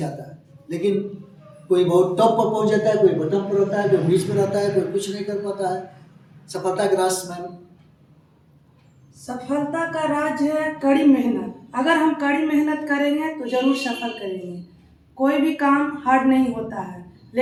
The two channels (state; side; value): identical; both; correlation 1.00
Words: लेकिन कोई बहुत टॉप पर पहुंच जाता है, कोई बटन पर रहता है, कोई बीच में रहता है, कोई कुछ नहीं कर पाता है। सफलता का राज मैम? सफलता का राज है कड़ी मेहनत। अगर हम कड़ी मेहनत करेंगे तो जरूर सफल करेंगे। कोई भी काम हार्ड नहीं होता है,